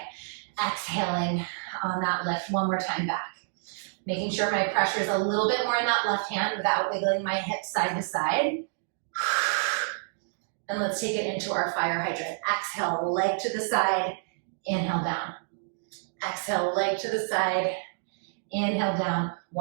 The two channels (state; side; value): silent; left; digital silence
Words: Exhaling on that lift. One more time back. Making sure my pressure is a little bit more in that left hand without wiggling my hips side to side. And let's take it into our fire hydrant. Exhale, leg to the side, inhale down. Exhale, leg to the side, inhale down.